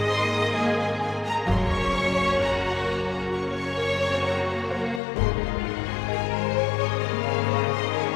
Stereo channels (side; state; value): right; drops out; at 5.0 s